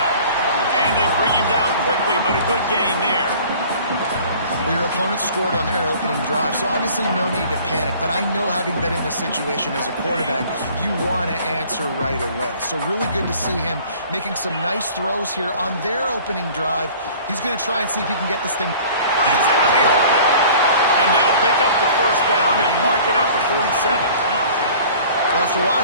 And they bring him down quickly, but a good gain there. Well, your opponent scored on their opening drive, so obviously no need to panic. But I know, having been in this situation as a quarterback, you want to answer right away. So really good to see him making some nice throws here on their opening drive. He's going to try and see if he can get this thing. Brings it to the open. And they'll pick up the first down and mark it at the 47. Well, after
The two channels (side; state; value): both; inverted; correlation -0.48